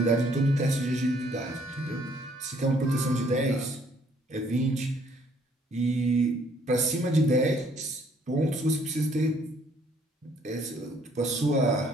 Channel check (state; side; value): normal; both; correlation 0.63